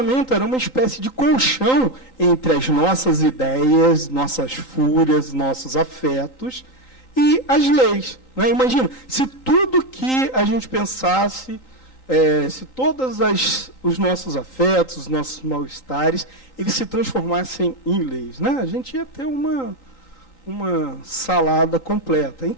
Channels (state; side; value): late; right; 3.9 ms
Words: era uma espécie de colchão entre as nossas ideias, nossas fúrias, nossos afetos e as leis. Né? Imagina, se tudo que a gente pensasse, se todos os nossos afetos, os nossos mal-estares, eles se transformassem em leis. Né? A gente ia ter uma salada completa.